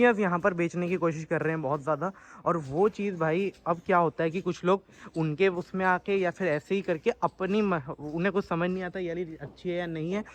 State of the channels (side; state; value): both; identical; correlation 1.00